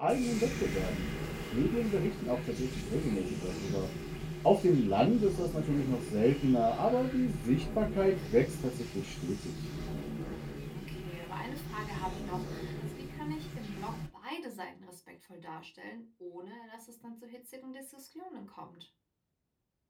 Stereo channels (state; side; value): identical; both; correlation 1.00